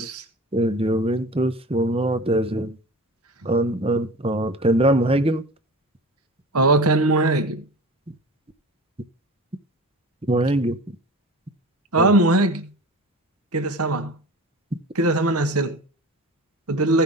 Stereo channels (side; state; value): both; normal; correlation 0.34